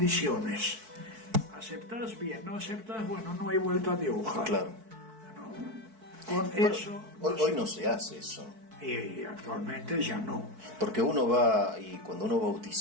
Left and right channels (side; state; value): left; late; 4.6 ms